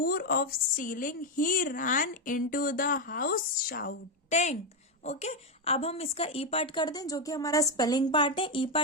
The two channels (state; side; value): normal; both; correlation 0.05